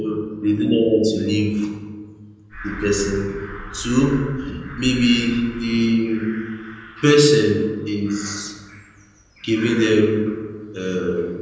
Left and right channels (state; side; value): identical; both; correlation 1.00